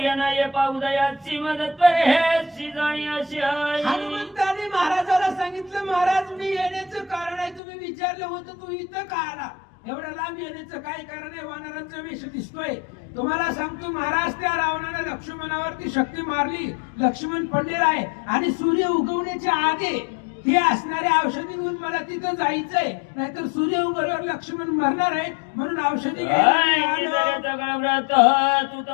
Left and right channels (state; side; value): drops out; right; at 7.6 s